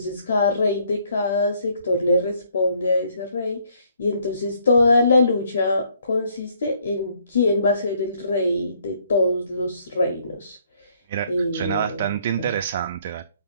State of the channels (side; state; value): both; inverted; correlation -0.66